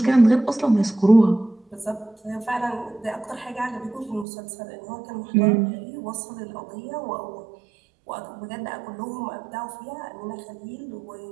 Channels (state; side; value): drops out; left; at 4.2 s